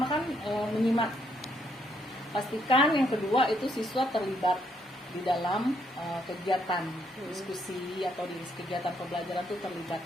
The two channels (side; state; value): both; normal; correlation 0.73